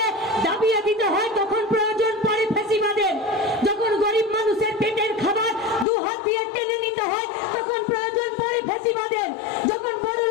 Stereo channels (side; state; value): right; drops out; at 5.9 s